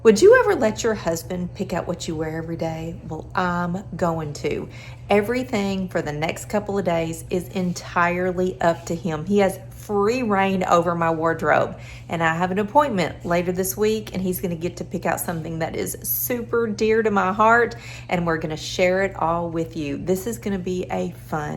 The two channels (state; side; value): identical; both; correlation 1.00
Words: Would you ever let your husband pick out what you wear every day? Well, I'm going to. Everything for the next couple of days is entirely up to him. He has free reign over my wardrobe. And I have an appointment later this week, and he's going to get to pick out something that is super dear to my heart, and we're going to share it all with you. This is going to be a